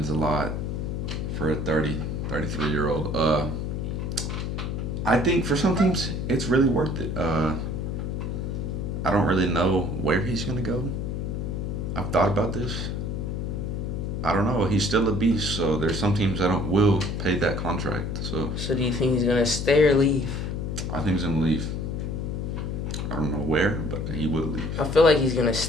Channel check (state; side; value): noise; left; hum, 2 dB below the sound